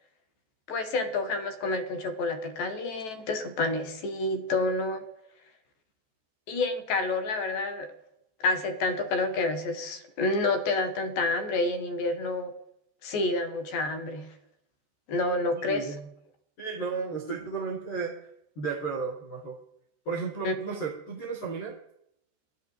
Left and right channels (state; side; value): late; right; 14 ms